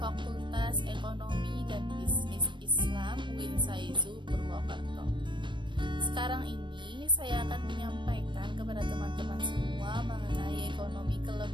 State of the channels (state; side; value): late; left; 0.23 ms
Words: Ekonomi dan Bisnis Islam UIN Saizu Purwokerto. Sekarang ini saya akan menyampaikan kepada teman-teman semua mengenai ekonomi